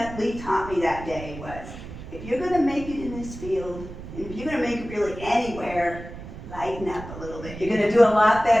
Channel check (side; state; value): right; noise; rumble, 12 dB below the sound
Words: Lee taught me that day was, if you're going to make it in this field, and if you're going to make it really anywhere, lighten up a little bit. You're going to do a lot